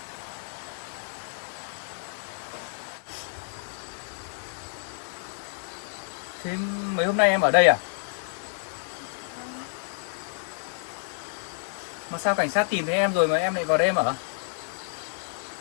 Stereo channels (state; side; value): silent; right; digital silence